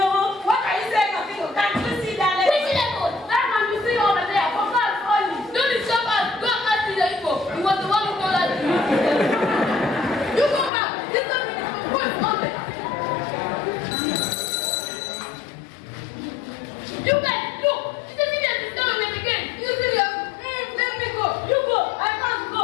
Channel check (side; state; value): right; drops out; at 10.7 s